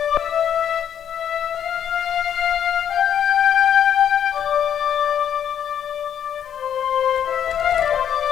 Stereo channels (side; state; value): right; quieter; 9.2 dB